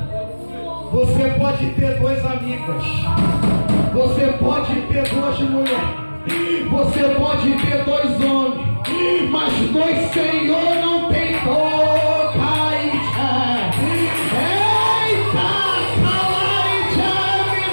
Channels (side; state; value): both; inverted; correlation -1.00